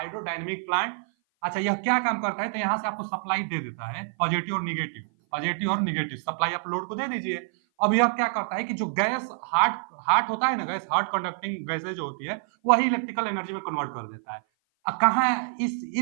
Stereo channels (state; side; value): silent; left; 56 dB below the other